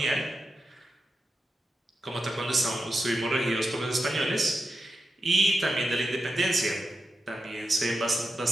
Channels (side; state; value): both; normal; correlation 0.89